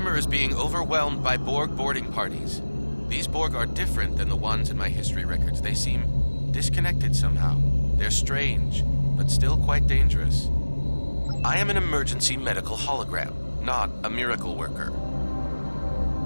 is being overwhelmed by Borg boarding parties. These Borg are different than the ones in my history records. They seem disconnected somehow. They're strange, but still quite dangerous. I am an emergency medical hologram, not a miracle worker.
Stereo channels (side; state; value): both; inverted; correlation -1.00